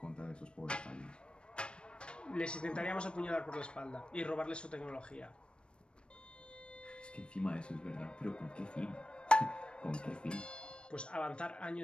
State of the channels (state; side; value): late; right; 0.056 ms